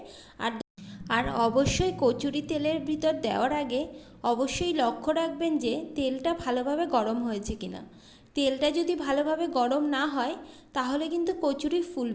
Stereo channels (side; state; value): both; identical; correlation 1.00